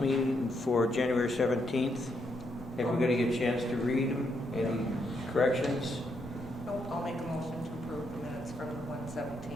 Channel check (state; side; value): normal; both; correlation 0.78